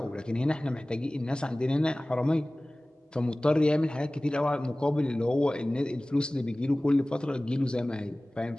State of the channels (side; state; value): both; normal; correlation 0.98